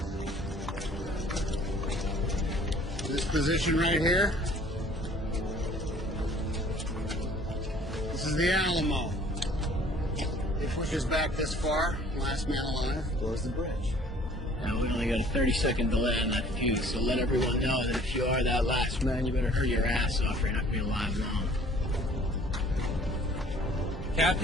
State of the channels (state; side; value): normal; both; correlation 0.54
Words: This position right here, this is the Alamo. It pushes back this far, last man alive goes the bridge. Now, we only got a 30-second delay on that fuse, so let everyone know that if you are that last man, you better hurry your ass off or you're not going to be alive long.